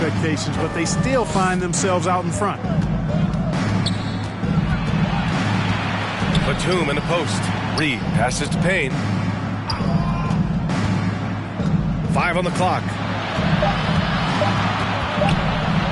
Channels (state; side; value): identical; both; correlation 1.00